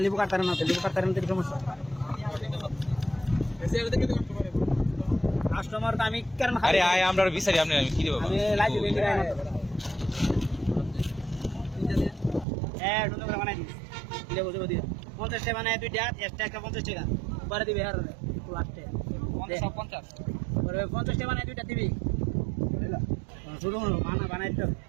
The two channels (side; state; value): left; drops out; at 12.5 s